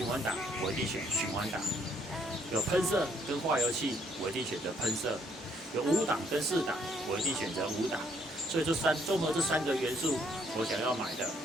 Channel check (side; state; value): both; normal; correlation 0.68